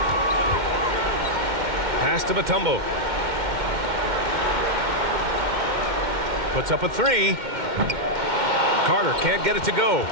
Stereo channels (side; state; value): left; late; 2.1 ms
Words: Pass to Mutombo. Puts up a 3. Carter can't get it to go.